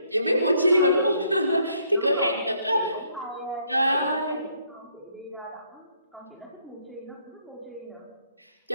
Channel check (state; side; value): inverted; both; correlation -0.69